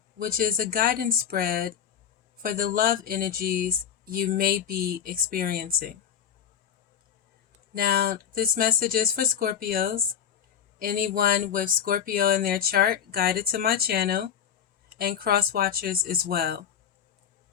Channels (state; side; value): quieter; right; 8.7 dB